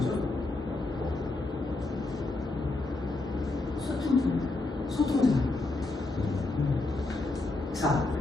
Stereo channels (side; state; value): right; quieter; 3.2 dB